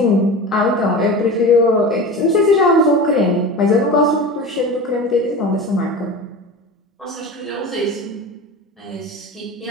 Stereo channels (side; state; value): both; normal; correlation 0.31